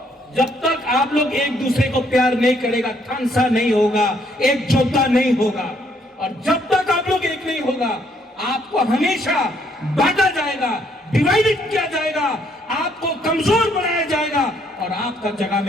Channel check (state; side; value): normal; both; correlation 0.69